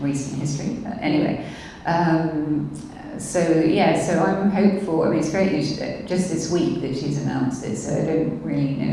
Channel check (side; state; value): both; identical; correlation 1.00